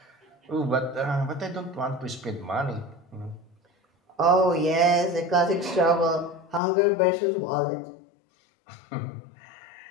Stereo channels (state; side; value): drops out; right; at 6.6 s